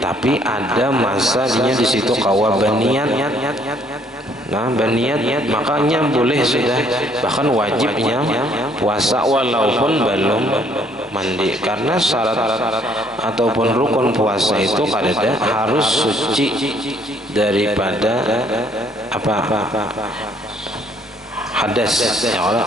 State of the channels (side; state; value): both; normal; correlation 0.64